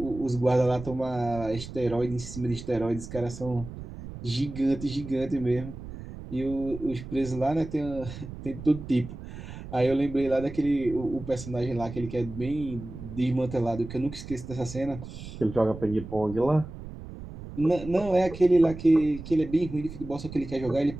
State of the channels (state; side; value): noise; right; rumble, 12 dB below the sound